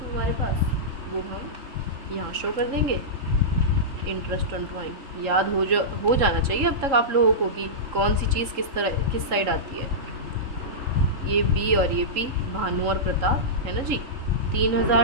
हमारे पास, वो हम यहाँ शो कर देंगे। इंटरेस्ट ऑन ड्राइंग याद हो जाना चाहिए अब तक आप लोगों को कि कौन सी चीज़ किस साइड आती है। ये बी और ये पी, भानु और प्रताप, है ना जी।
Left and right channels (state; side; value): late; left; 3.7 ms